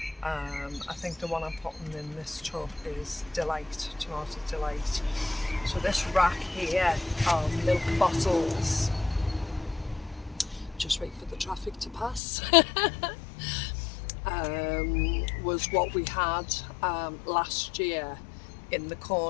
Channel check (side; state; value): right; drops out; at 12.2 s